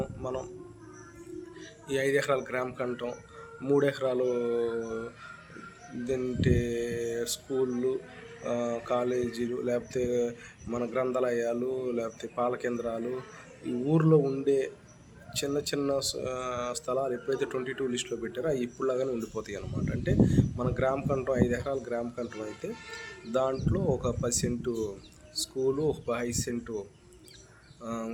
మనం ఈ 5 ఎకరాల కంటం, 3 ఎకరాలు ఇదంటే స్కూళ్ళు, కాలేజీలు, లేకపోతే మన గ్రంథాలయాలు, లేకపోతే పాల కేంద్రాలు, ఈ ఊర్లో ఉండే చిన్న చిన్న స్థలాలు ఎప్పుడైతే 22 లిస్టులో పెట్టారో అవి ఇప్పుడులాగానే ఉండిపోతాయి అన్నమాట. అంటే మన కంటం 5 ఎకరాల కంటం అయితే దాంట్లో ఒక 10 సెంటు స్కూలు, ఒక 5 సెంటు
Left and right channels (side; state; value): both; identical; correlation 1.00